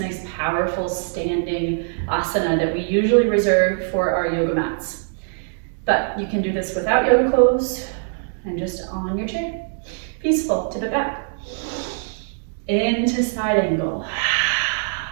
powerful standing asana that we usually reserve for our yoga mats. But you can do this without yoga clothes, And just on your chair. Peaceful, tip it back. Into side angle.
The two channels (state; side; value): silent; left; digital silence